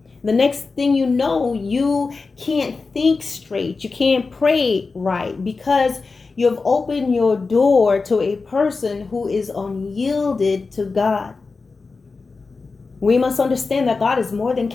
The next thing you know, you can't think straight. You can't pray right because you've opened your door to a person who is unyielded to God. We must understand that God is more than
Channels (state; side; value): quieter; right; 4.2 dB